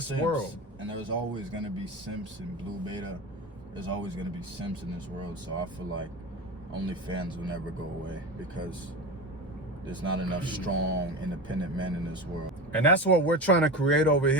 world. And there's always gonna be simps in Blue Beta. There's always gonna be simps in this world. So I feel like OnlyFans will never go away because there's not enough strong, independent men in this world. And that's what we're trying to create over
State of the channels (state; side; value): normal; both; correlation 0.26